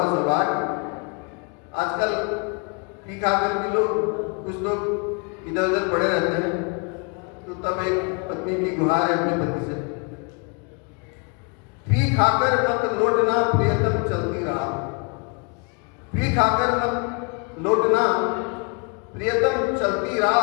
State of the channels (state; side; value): quieter; right; 35.1 dB